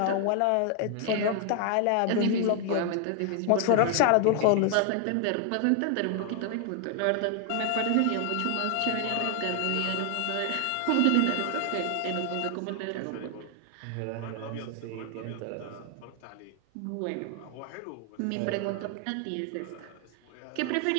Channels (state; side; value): different; both; correlation 0.00